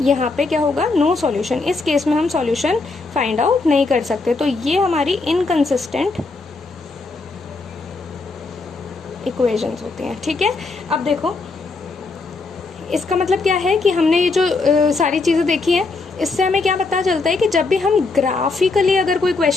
यहाँ पे क्या होगा, नो सॉल्यूशन। इस केस में हम सॉल्यूशन फाइंड आउट नहीं कर सकते, तो ये हमारी इनकंसिस्टेंट इक्वेशंस होती हैं। ठीक है, अब देखो इसका मतलब क्या है कि हमने ये जो सारी चीज़ें देखी हैं, इससे हमें क्या पता चलता है कि जब भी हम ग्राफिकली अगर कोई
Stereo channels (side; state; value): right; quieter; 3.8 dB